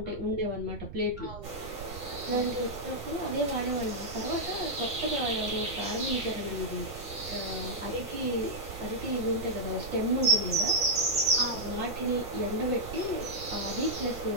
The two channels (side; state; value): right; noise; rumble, 11 dB below the sound